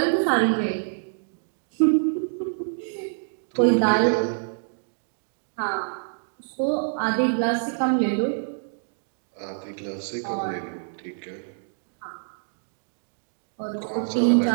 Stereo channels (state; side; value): silent; left; digital silence